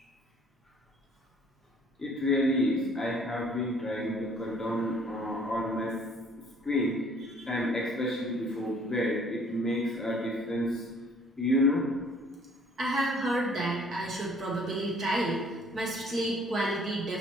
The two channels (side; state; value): both; normal; correlation 0.57